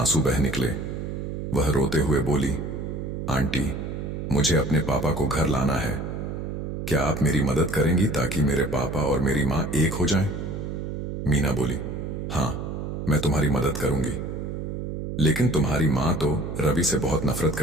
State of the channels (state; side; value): noise; right; hum, 5 dB below the sound